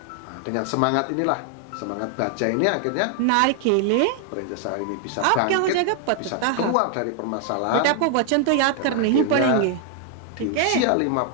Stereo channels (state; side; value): different; both; correlation 0.00